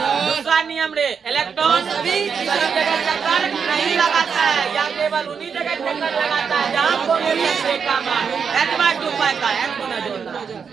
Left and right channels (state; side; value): quieter; left; 6.3 dB